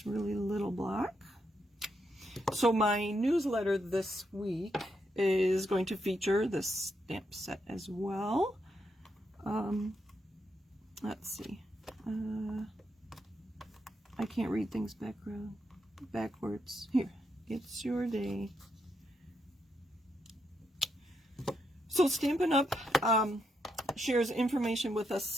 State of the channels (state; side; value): normal; both; correlation 0.80